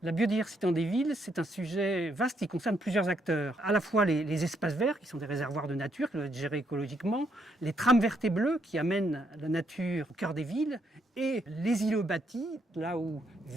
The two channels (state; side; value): normal; both; correlation 0.74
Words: La biodiversité dans des villes, c'est un sujet vaste qui concerne plusieurs acteurs. À la fois les espaces verts, qui sont des réservoirs de nature, qui doivent être gérés écologiquement, les trames vertes et bleues, qui amènent la nature au cœur des villes, et les îlots bâtis, là où